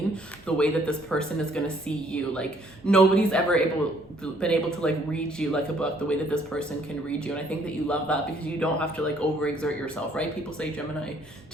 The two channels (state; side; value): noise; right; rumble, 28 dB below the sound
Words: the way that this person is going to see you. Like, nobody's ever been able to like read you like a book the way that this person can read you. And I think that you love that because you don't have to like overexert yourself, right? People say Gemini,